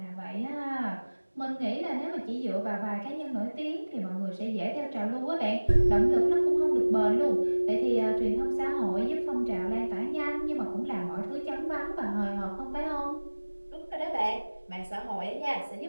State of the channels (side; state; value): both; inverted; correlation -1.00